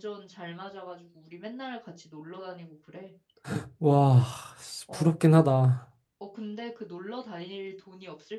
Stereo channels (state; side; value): identical; both; correlation 1.00